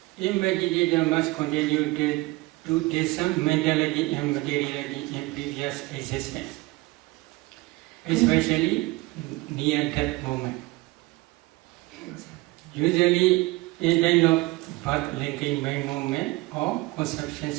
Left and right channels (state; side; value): quieter; left; 21.4 dB